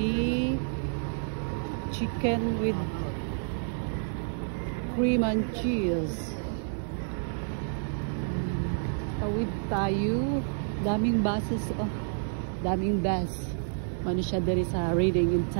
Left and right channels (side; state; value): left; silent; digital silence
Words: chicken with cream and cheese. Tawid tayo. Daming buses. Oh, daming bus. Mano siya diri sa Reading in